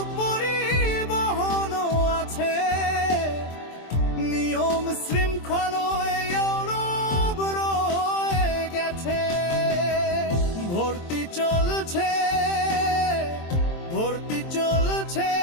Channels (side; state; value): right; late; 23 ms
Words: পরিবহনও আছে, নিয়ম শৃঙ্খলায়